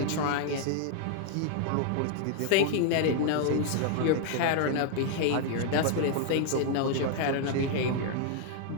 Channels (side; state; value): both; different; correlation 0.00